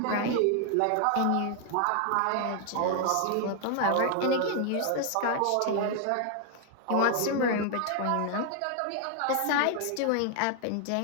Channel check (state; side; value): different; both; correlation 0.00